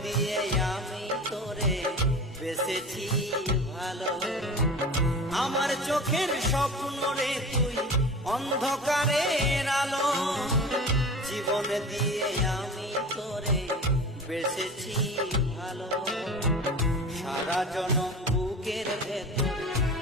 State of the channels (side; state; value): both; normal; correlation 0.35